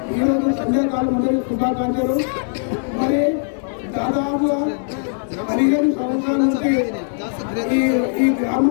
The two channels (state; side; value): silent; right; 64 dB below the other